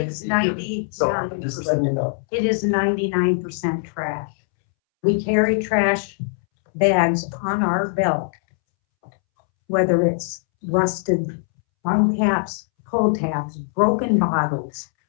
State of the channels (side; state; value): right; silent; 65 dB below the other